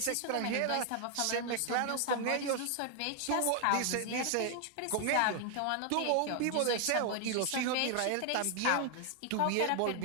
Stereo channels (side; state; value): both; different; correlation 0.00